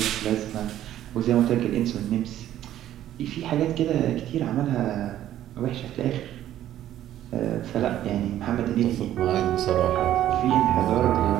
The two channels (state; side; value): quieter; left; 12.3 dB